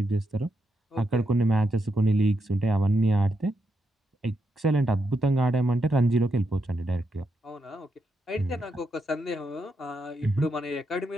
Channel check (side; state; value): both; normal; correlation 0.83